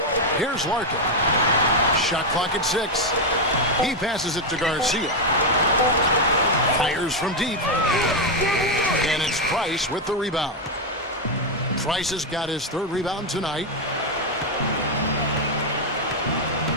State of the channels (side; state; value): both; normal; correlation 0.04